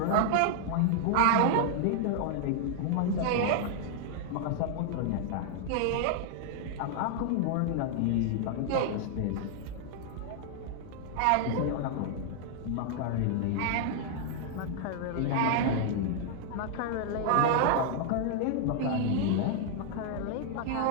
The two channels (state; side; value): different; both; correlation -0.01